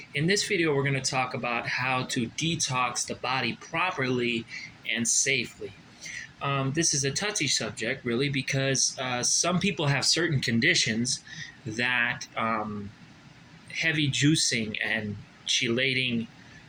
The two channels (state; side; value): identical; both; correlation 1.00